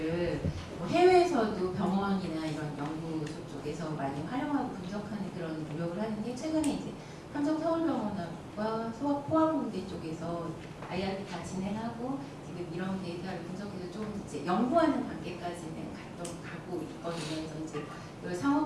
뭐 해외에서도 병원이나 이런 연구소 쪽에서 많이 활용하고 분석하는 그런 노력을 하는데, 최근에 이제 삼성서울병원과 포항공대 쪽에서 IRB 다 진행하고 지금 이런 데이터를 분석해서 좀 이제 연구하는 단계까지는 가고 있거든요. 그래서 이제 이걸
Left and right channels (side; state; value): both; identical; correlation 1.00